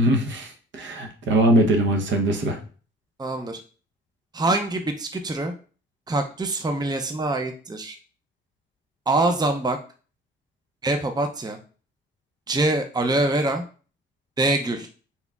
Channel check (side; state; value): both; normal; correlation 0.46